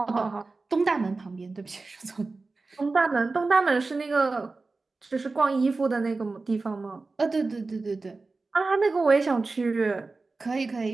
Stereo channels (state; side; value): quieter; left; 3.7 dB